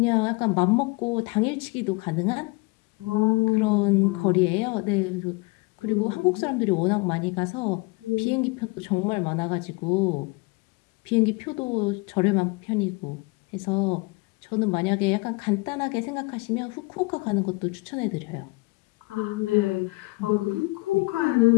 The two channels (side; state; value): right; quieter; 25.6 dB